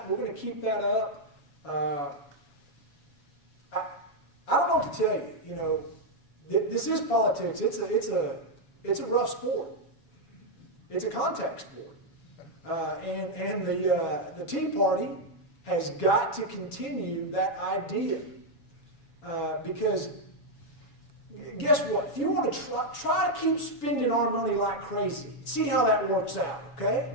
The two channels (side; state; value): right; late; 7.1 ms